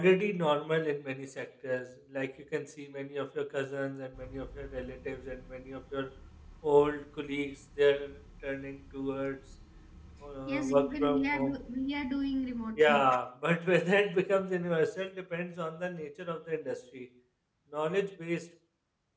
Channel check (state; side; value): identical; both; correlation 1.00